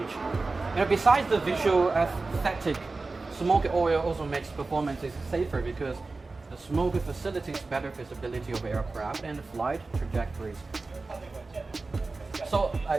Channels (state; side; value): quieter; left; 3.7 dB